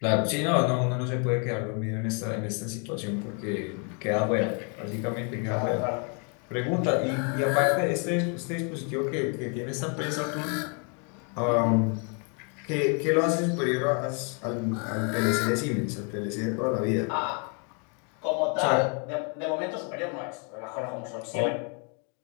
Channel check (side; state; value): right; quieter; 37.8 dB